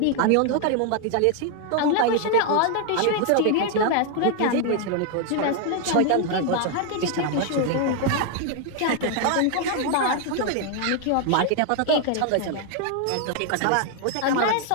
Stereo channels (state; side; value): different; both; correlation 0.00